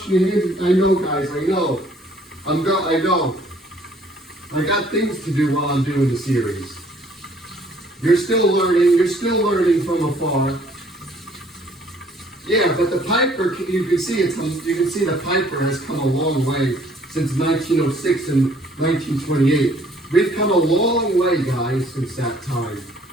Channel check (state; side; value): normal; both; correlation 0.60